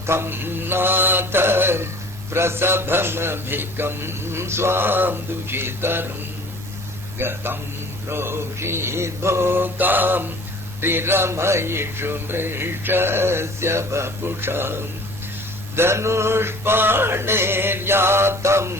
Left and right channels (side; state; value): both; normal; correlation 0.47